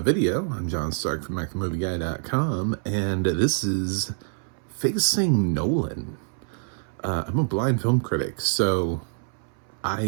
video. I'm John Stark from MacTheMovieGuy.com, and this is Facing Nolan. I'm a blind film critic, so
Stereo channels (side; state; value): left; silent; 61 dB below the other